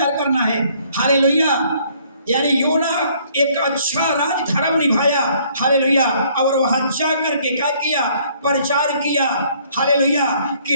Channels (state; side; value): inverted; both; correlation -0.62